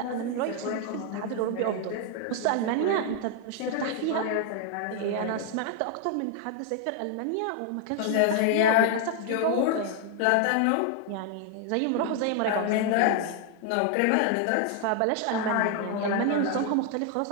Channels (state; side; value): different; both; correlation 0.00